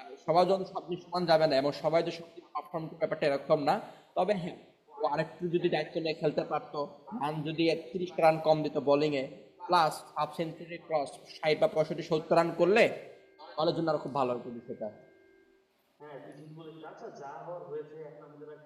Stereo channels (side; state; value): both; identical; correlation 1.00